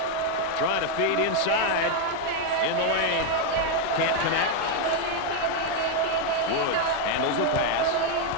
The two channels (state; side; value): different; both; correlation 0.01